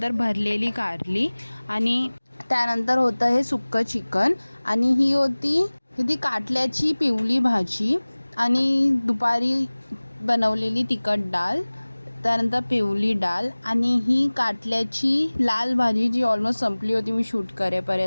भरलेली कारली आणि त्यानंतर होतं हे सुक्कं चिकन आणि ही होती काटल्याची पिवली भाजी आणि दुपारी बनवलेली तिखट डाळ, त्यानंतर पिवली डाळ आणि ही काटल्याची लाल भाजी जी ऑलमोस्ट संपली होती मी शूट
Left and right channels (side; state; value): both; inverted; correlation -1.00